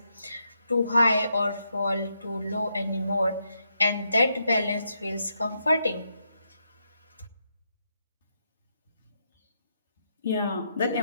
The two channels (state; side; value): inverted; both; correlation -0.80